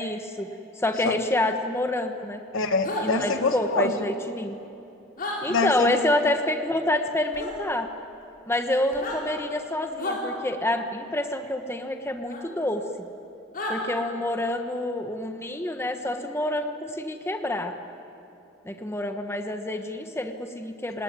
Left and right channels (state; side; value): normal; both; correlation 0.43